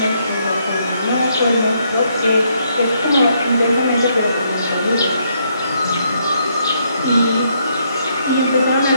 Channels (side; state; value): both; inverted; correlation -0.73